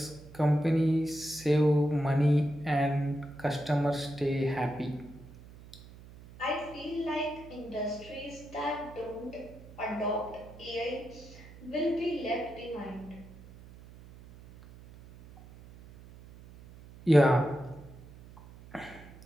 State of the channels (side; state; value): right; noise; hum, 19 dB below the sound